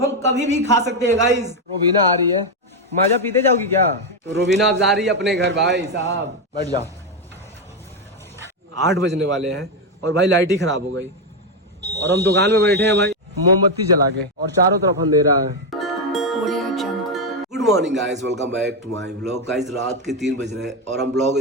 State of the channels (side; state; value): both; normal; correlation 0.06